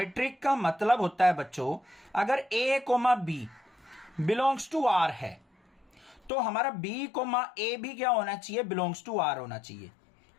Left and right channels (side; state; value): right; drops out; at 6.3 s